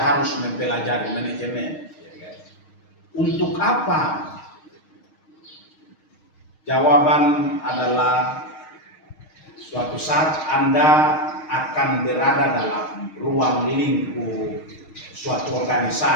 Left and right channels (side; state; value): right; late; 6.4 ms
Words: mempelajari manajemen? Untuk apa? Jawaban adalah suatu saat Anda akan berada dalam ruang lingkup suatu